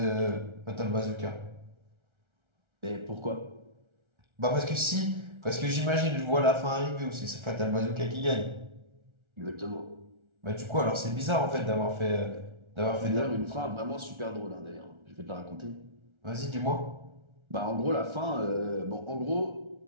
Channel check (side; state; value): left; late; 1.3 ms